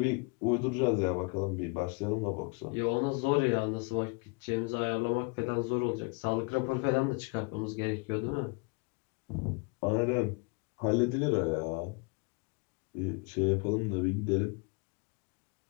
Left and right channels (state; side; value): quieter; right; 31.4 dB